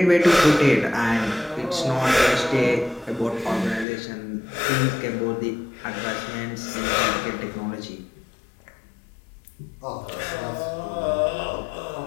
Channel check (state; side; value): drops out; right; at 3.9 s